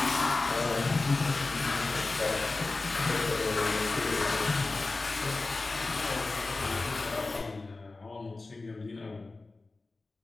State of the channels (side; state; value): right; quieter; 3.5 dB